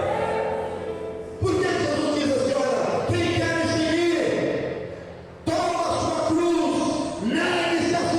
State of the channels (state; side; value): identical; both; correlation 1.00